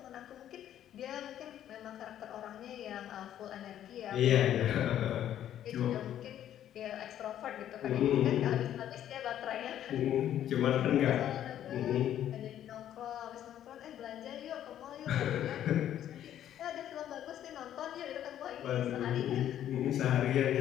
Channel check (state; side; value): quieter; right; 11.1 dB